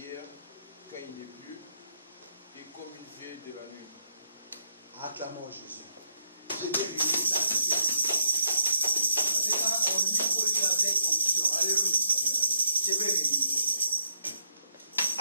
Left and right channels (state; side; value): inverted; both; correlation -0.75